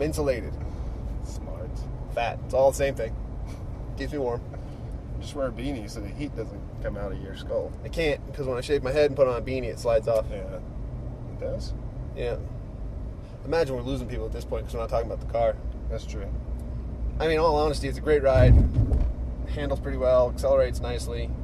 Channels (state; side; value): identical; both; correlation 1.00